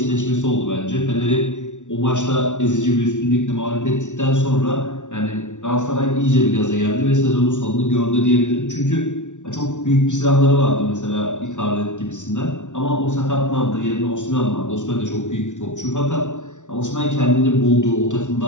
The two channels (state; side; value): late; right; 0.86 ms